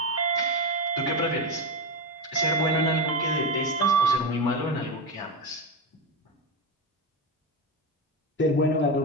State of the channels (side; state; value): both; normal; correlation 0.15